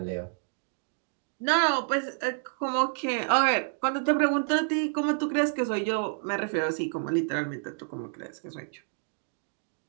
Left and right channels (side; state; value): left; silent; 59 dB below the other